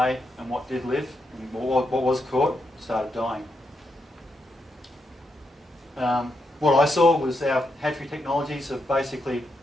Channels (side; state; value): both; normal; correlation 0.82